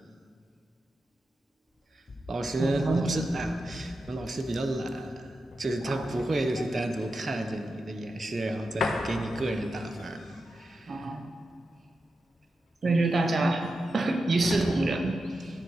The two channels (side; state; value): both; normal; correlation 0.89